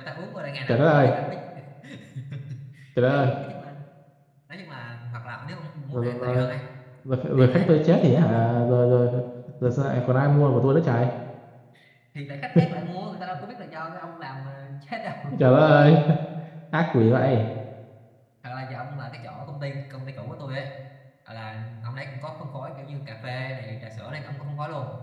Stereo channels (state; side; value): identical; both; correlation 1.00